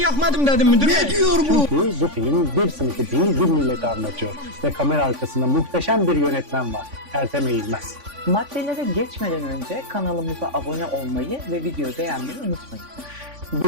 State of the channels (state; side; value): late; left; 3.5 ms